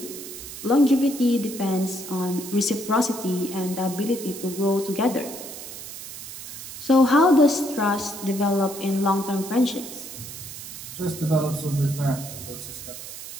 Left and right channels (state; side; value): noise; right; hiss, 11 dB below the sound